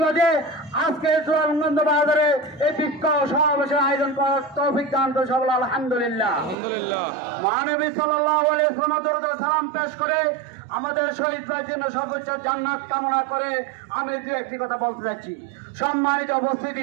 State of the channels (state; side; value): drops out; left; at 6.6 s